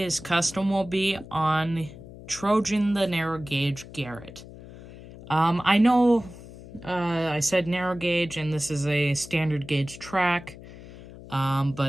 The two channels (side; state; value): left; noise; hum, 16 dB below the sound